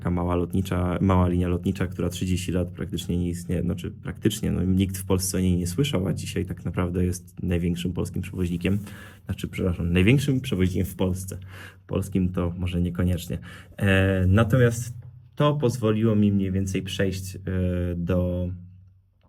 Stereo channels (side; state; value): both; identical; correlation 1.00